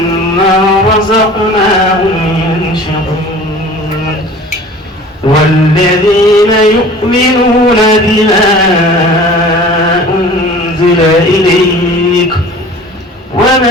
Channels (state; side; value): normal; both; correlation 0.44